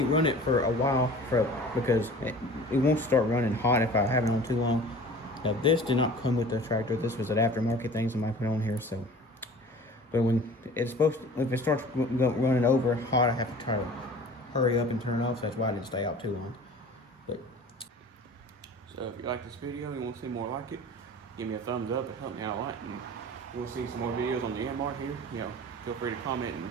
run it for a while because it won't start running hot if I have it on too long. Now this did not come with the tractor. This was an aftermarket thing somebody put on here. So, but when it's supposed to, if it starts running over hot, I have to try to hurry up and turn it off. So that's why I didn't stay out too long. But so if you like this video and you want to see more like it, give me a thumbs up. It helped me out a lot. And you want to see some more videos on the Yanmar here, feel free to comment and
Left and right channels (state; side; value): normal; both; correlation 0.42